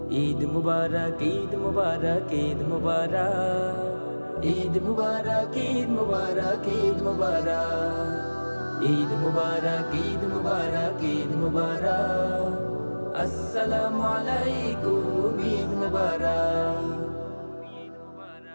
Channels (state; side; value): inverted; both; correlation -1.00